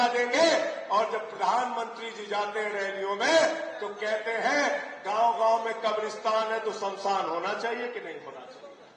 देंगे। और जब प्रधानमंत्री जी जाते हैं रैलियों में तो कहते हैं गांव-गांव में कब्रिस्तान है तो शमशान होना चाहिए कि नहीं होना चाहिए।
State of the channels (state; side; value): identical; both; correlation 1.00